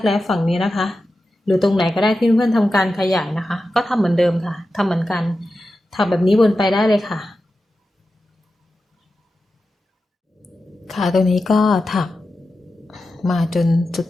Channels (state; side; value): normal; both; correlation 0.92